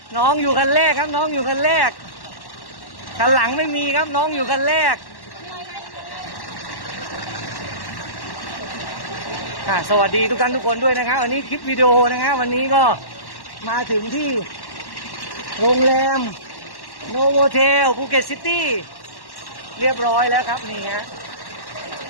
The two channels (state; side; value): late; right; 1.1 ms